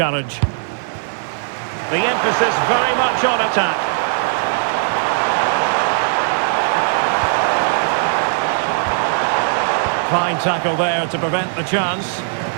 The emphasis very much on attack. Fine tackle there to prevent the chance.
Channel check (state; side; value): silent; left; 65 dB below the other